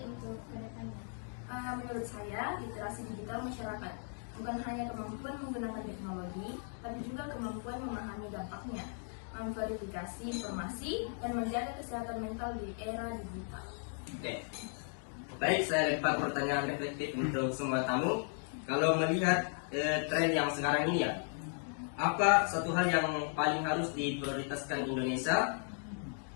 kedepannya? Menurut saya, literasi digital masyarakat bukan hanya kemampuan menggunakan teknologi, tapi juga kemampuan memahami dampaknya, memverifikasi informasi, dan menjaga kesehatan mental di era digital. Oke. Baik, saya lempar pertanyaan reflektif untuk semua tamu. Kalau melihat tren yang sekarang ini ya, apa satu hal yang paling harus diprioritaskan Indonesia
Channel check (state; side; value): silent; right; 54 dB below the other